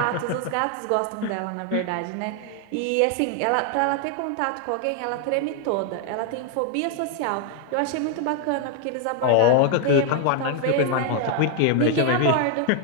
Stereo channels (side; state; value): both; different; correlation 0.00